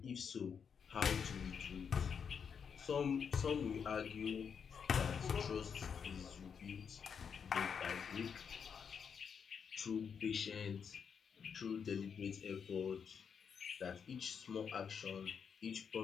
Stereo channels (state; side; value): quieter; right; 6.8 dB